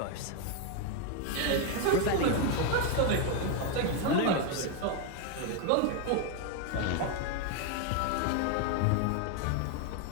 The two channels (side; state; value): both; different; correlation 0.01